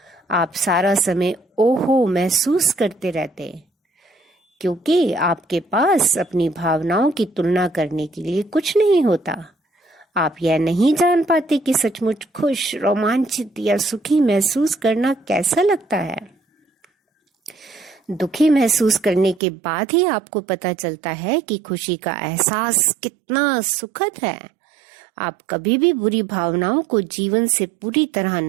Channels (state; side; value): drops out; left; at 19.4 s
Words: आप सारा समय ओहो महसूस करते रहते, क्योंकि आपके पास अपनी भावनाओं की तुलना करने के लिए कुछ नहीं होता। आप यह नहीं जान पाते कि सचमुच खुश, रोमांचित या सुखी महसूस करना कैसा लगता है। दुखी महसूस करने के बाद ही आपको पता चलता है कि खुशी का एहसास कितना सुखद है। आप कभी भी बुरी भावनाओं को जीवन से पूरी तरह